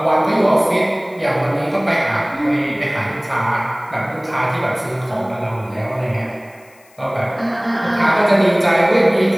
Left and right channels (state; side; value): noise; left; hiss, 29 dB below the sound